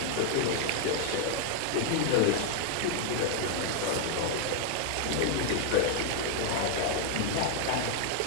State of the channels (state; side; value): different; both; correlation 0.00